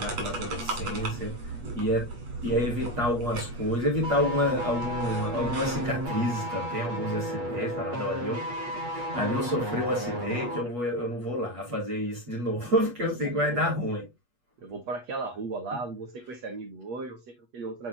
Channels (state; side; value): late; left; 8.3 ms